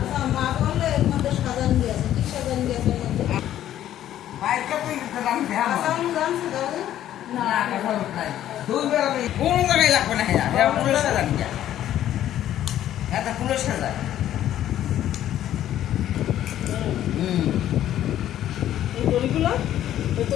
মা বললে এর মধ্যে সাজান দিয়েছে কি সাজান দিয়েছে এর মধ্যে বাইরে তুই দাম দেয়া আসাম জানছে দাদা না কথা নাই দুই বেলা কোন জায়গায় লাগবে না হ্যাঁ হ্যাঁ পুরো সাজান যা এটা পুরো সাজায় এই দড়িগুলো তো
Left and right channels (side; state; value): right; quieter; 12.0 dB